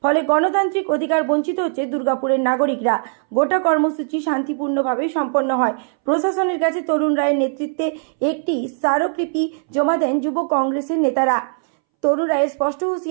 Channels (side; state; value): left; silent; 65 dB below the other